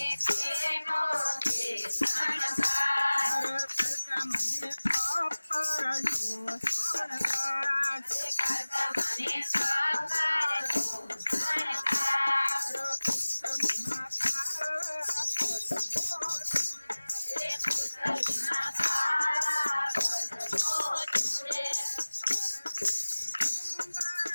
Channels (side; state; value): both; inverted; correlation -1.00